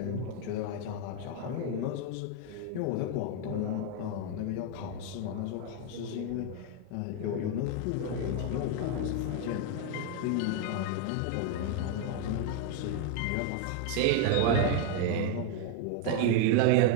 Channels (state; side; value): different; both; correlation 0.01